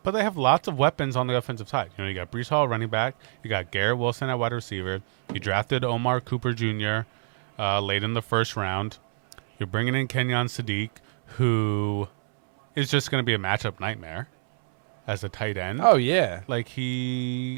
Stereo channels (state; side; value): silent; left; 61 dB below the other